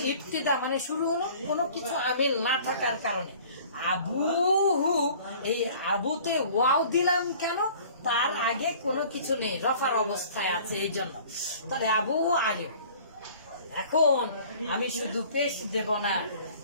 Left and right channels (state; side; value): inverted; both; correlation -0.49